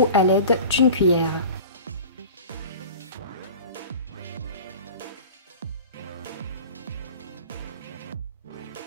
à l'aide d'une cuillère.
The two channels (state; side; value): inverted; both; correlation -0.38